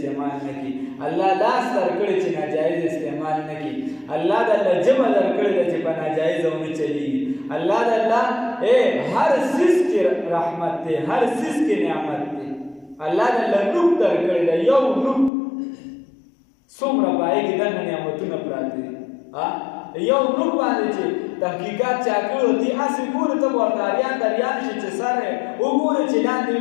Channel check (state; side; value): drops out; right; at 15.3 s